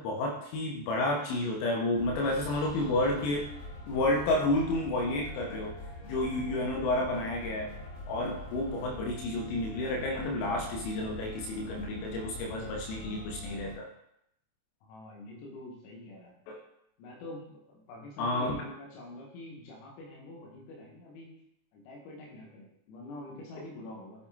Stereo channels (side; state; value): right; late; 27 ms